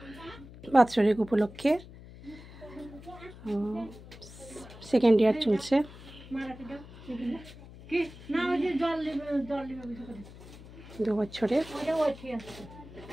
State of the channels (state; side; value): noise; left; hum, 17 dB below the sound